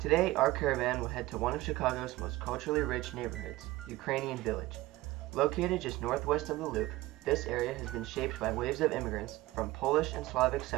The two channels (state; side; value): quieter; left; 18.4 dB